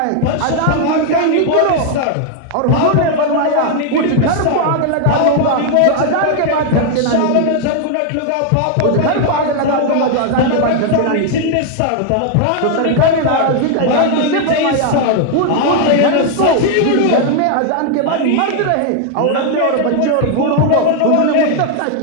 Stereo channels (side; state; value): both; different; correlation 0.00